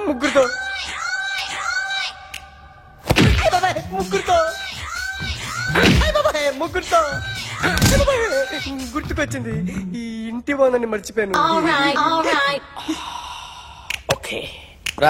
ముగ్గురుతో ముగ్గురుతో గుర్తుకొచ్చింది. ఈ ఇంటి బాగుందని మర్చిపోయాను. ఓకే.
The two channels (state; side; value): identical; both; correlation 1.00